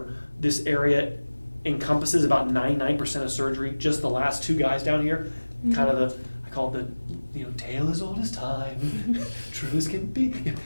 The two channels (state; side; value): inverted; both; correlation -1.00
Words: This area encompasses about 99% of surgery. Just the last two guys down here, kind of I call it the tale as old as time, true as can be.